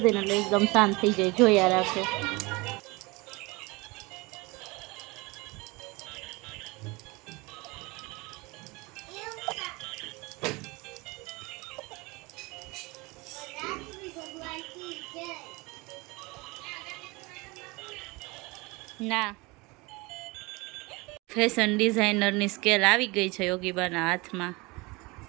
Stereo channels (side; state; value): left; quieter; 24.8 dB